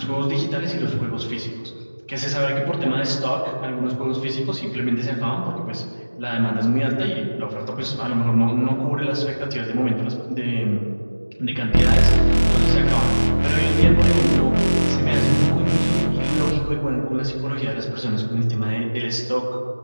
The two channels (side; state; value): both; inverted; correlation -1.00